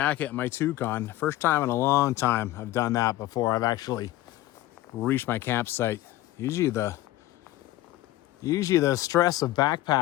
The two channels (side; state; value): right; quieter; 15.6 dB